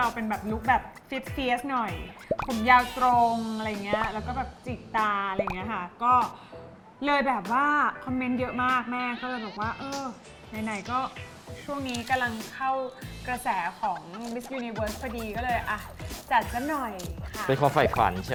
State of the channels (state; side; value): identical; both; correlation 1.00